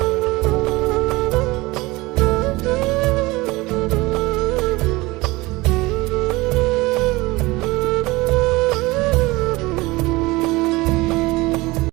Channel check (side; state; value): left; quieter; 21.7 dB